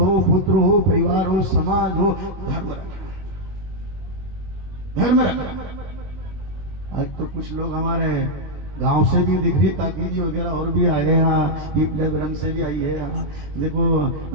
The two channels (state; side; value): late; left; 21 ms